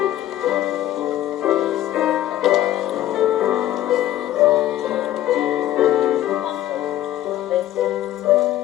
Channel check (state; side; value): quieter; right; 13.5 dB